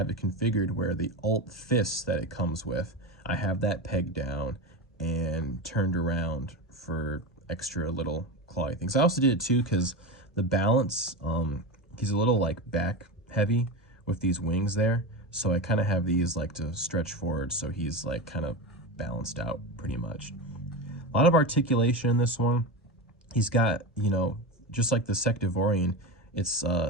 it configured where the alt fists that it comes with, I have that pegged down and turned around for extra little clawy things. I also did it too because the balance, he's a little like back heavy with these wings there, so I kind of have these like to stretch forward so he's like kind of balanced out pretty much. A lot of articulation in this one. He's got, you know, just like the Sectivorian, it's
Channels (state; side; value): normal; both; correlation 0.22